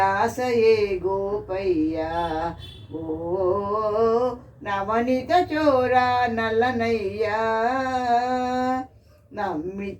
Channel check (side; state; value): both; identical; correlation 1.00